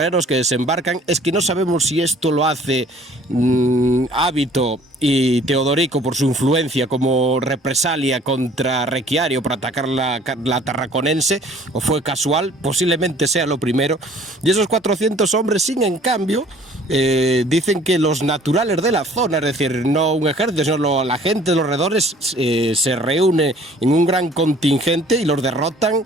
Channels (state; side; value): normal; both; correlation 0.54